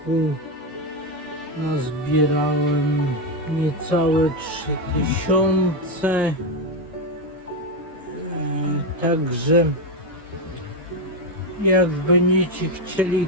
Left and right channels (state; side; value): normal; both; correlation 0.09